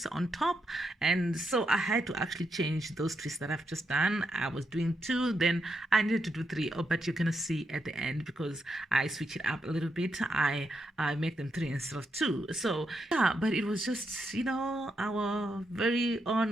on top, and so I had to actually change those twists that I've just done. I was doing 2, then I needed to do 3, but you're gonna see at the end because I switch it up a little bit. I make them 3 instead of 2. So yeah, but it was just our very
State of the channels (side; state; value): both; normal; correlation 0.82